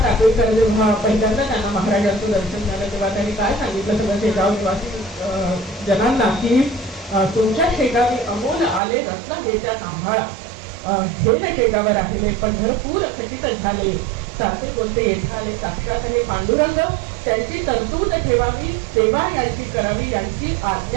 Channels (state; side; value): drops out; left; at 8.8 s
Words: टाकळीकर जेव्हा पहिल्यांदा त्यांना महाराजांचं दर्शन झालं तेव्हा त्यांनी काय सांगितलं सगळं शेगाव निवासी जनांना की तुमच्या शेगावी अमोल आले रत्न घेत्या सांभाळा, हे न शेगावर राहिले पंढरपूर खचित झाले, साचे बोलते येथे आले साक्षात हे पांडुरंग, त्यांची तरतूद ठेवावी, सेवा यांची करावी, यांची